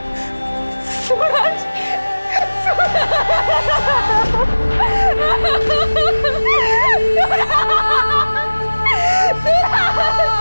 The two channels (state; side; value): inverted; both; correlation -1.00